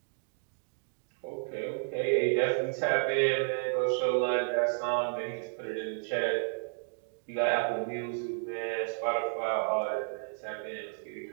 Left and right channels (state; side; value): silent; left; digital silence